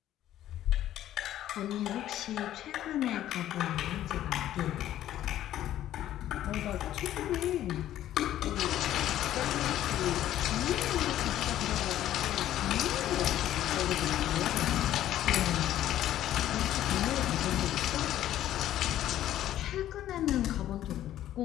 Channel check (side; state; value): right; quieter; 12.6 dB